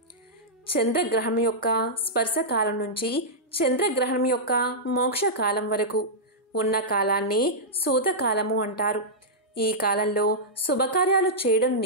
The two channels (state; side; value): normal; both; correlation -0.10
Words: చంద్రగ్రహణం యొక్క స్పర్శకాలం నుంచి చంద్రగ్రహణం యొక్క మోక్షకాలం వరకు ఉన్న కాలాన్ని సూతకాలము అంటారు. ఈ కాలంలో శుభకార్యాలు చేయడం